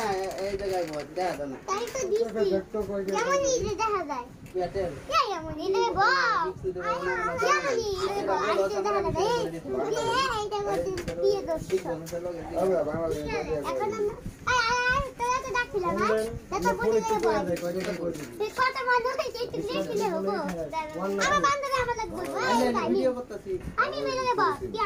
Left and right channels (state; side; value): identical; both; correlation 1.00